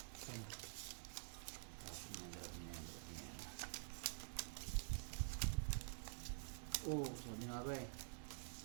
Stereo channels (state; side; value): silent; left; digital silence